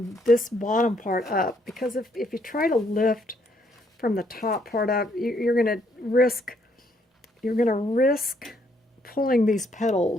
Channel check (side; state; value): both; normal; correlation 0.71